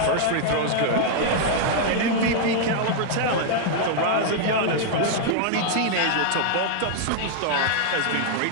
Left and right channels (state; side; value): different; both; correlation -0.01